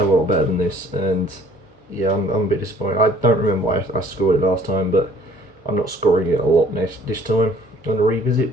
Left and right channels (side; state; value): both; normal; correlation 0.56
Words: of a lot better than this, and yeah, I'm a bit disappointed. I don't remember why I scored it last time, but I'm not scoring it a lot this time on a